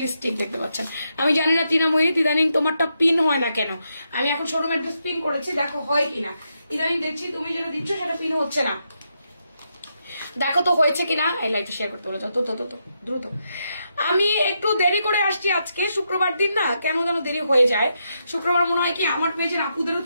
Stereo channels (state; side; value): inverted; both; correlation -0.82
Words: দেখতে পাচ্ছেন। আমি জানি না তৃণময়ী, ইদানিং তোমারটা পিন হয় না কেন? আমি এখন শোরুম অ্যাড্রেস পিন করেছি, দেখো হয় কিনা। ইদানিং দেখছি তুমি যেটা দিচ্ছ সেটা পিন হচ্ছে না, দেখো তো হয়েছে কিনা। এই লাইভটা শেয়ার করতে বলো যত দ্রুত। আমি একটু দেরি করে আসছি আজকে, শুক্রবার দিন না, কেন যেন দেরি হয়ে যায়। শুক্রবার মনে হয় কি আমার পেজের আপুদেরও